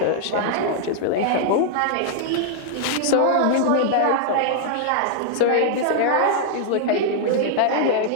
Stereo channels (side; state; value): both; different; correlation -0.01